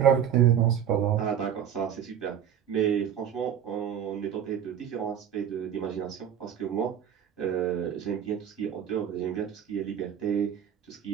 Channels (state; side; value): quieter; left; 9.2 dB